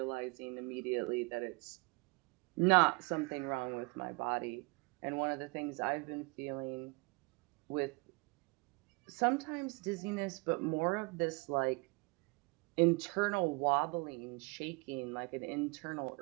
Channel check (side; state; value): left; quieter; 29.0 dB